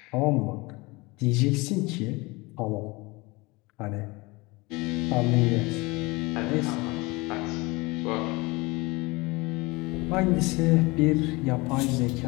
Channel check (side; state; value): right; quieter; 24.1 dB